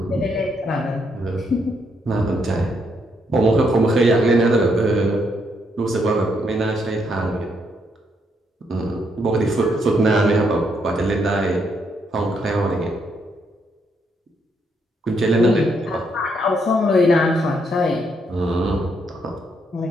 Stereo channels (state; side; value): normal; both; correlation 0.75